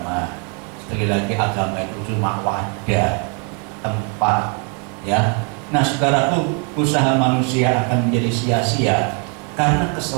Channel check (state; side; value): quieter; left; 37.7 dB